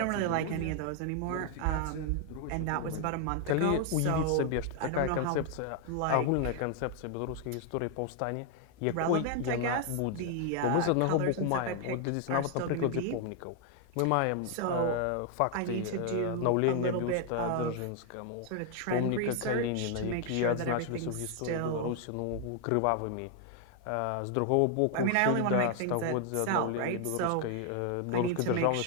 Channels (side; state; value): both; different; correlation 0.00